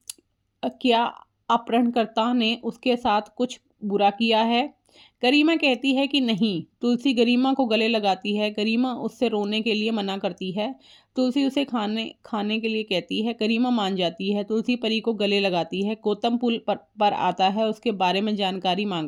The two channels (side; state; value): both; identical; correlation 1.00